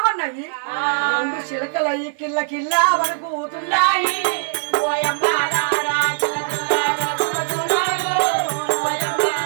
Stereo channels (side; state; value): left; silent; 56 dB below the other